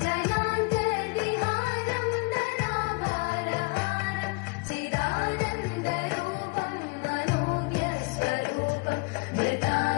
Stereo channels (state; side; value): quieter; right; 28.2 dB